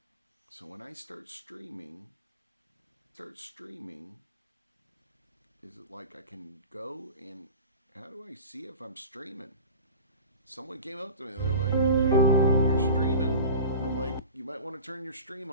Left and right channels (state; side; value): inverted; both; correlation -0.36